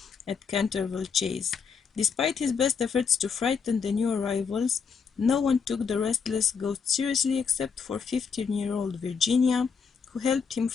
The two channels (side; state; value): right; quieter; 6.0 dB